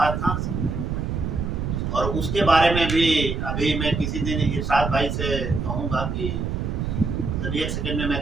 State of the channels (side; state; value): right; noise; rumble, 2 dB below the sound